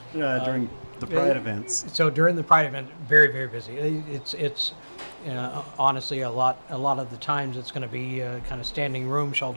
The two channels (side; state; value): both; inverted; correlation -1.00